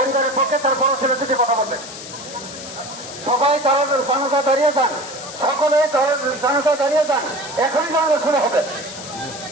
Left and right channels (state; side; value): noise; left; hiss, 12 dB below the sound